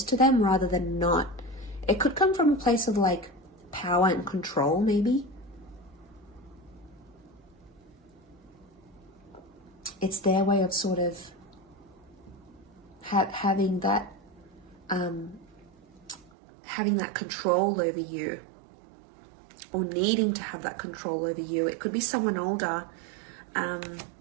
to them rather than not. It could come from a place of like power and control, maybe. It's their way of sort of having that control over you, or needing to have that control over you. It could be someone older,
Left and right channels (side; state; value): left; drops out; at 16.3 s